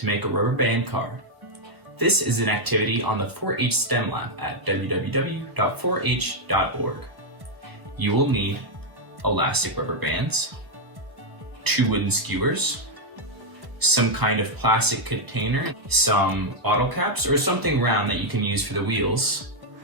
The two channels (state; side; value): late; left; 1.2 ms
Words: make a rubber band car. This is an activity on the 4-H STEM Lab at www.4h.org. You will need elastic rubber bands, 2 wooden skewers, some kind of plastic container, some bottle caps, or something round that you can use for the wheels.